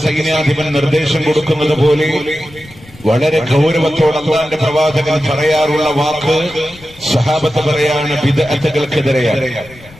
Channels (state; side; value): noise; left; rumble, 22 dB below the sound